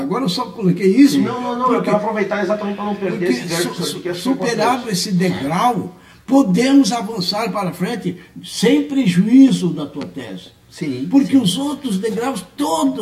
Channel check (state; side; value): identical; both; correlation 1.00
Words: eu só coloquei isso. Não, eu quero aproveitar exatamente para não perder esse verbo. Superado esse degrau, podemos avançar para frente sem prejuízo da tua tese. Sim, porque os outros degraus,